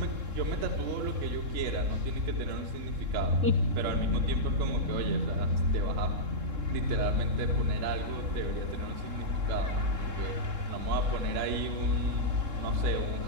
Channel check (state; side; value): late; left; 3.7 ms